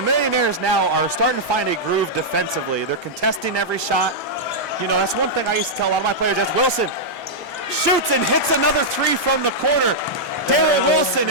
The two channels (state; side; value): normal; both; correlation -0.07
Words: Millionaires now are starting to find a groove defensively. They're contesting every shot. That's one thing I used to tell a lot of my players. That's Wilson shoots and hits another 3 from the corner. Daryl Wilson